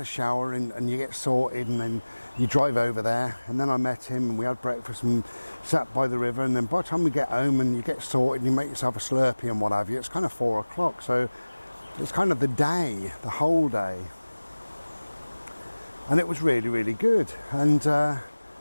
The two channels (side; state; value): both; inverted; correlation -1.00